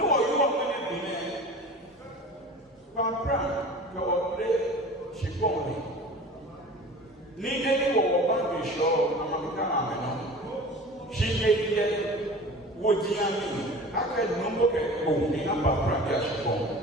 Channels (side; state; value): both; normal; correlation 0.39